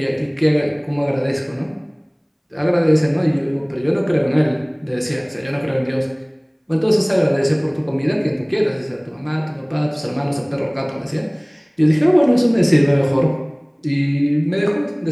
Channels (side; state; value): both; identical; correlation 1.00